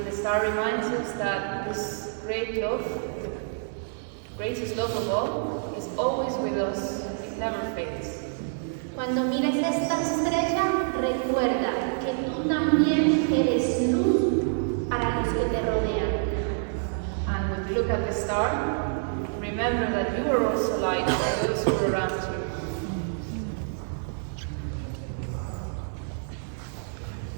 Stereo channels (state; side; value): silent; left; digital silence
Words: star reminds us that this great love, the greatest love of all, is always with us. It never fades. Cuando mires esta estrella, recuerda que tú también eres luz para los que te rodean. And when you look at the star, remember that you are also light for those who are around you.